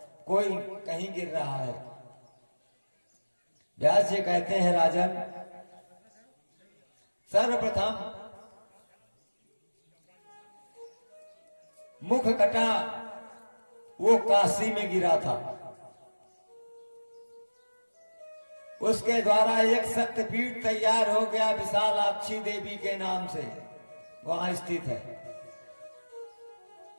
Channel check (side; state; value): both; inverted; correlation -1.00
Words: कोई कहीं गिर रहा है। व्यास जी कहते हैं, राजन सर्वप्रथम मुख कटा वो काशी में गिरा था, उसके द्वारा एक शक्तिपीठ तैयार हो गया विशालाक्षी देवी के नाम से, वहां स्थित है।